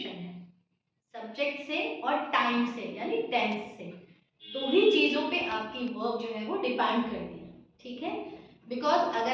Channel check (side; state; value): both; identical; correlation 1.00